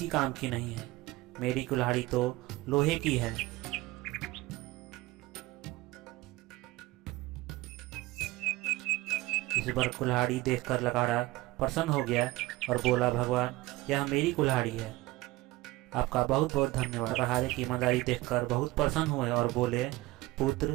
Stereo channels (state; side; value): quieter; left; 19.3 dB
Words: काम की नहीं है। मेरी कुल्हाड़ी तो लोहे की है। इस बार कुल्हाड़ी देखकर लकड़हारा प्रसन्न हो गया और बोला, भगवान यह मेरी कुल्हाड़ी है। आपका बहुत बहुत धन्यवाद। लकड़हारे की ईमानदारी देखकर बहुत प्रसन्न हुए और बोले,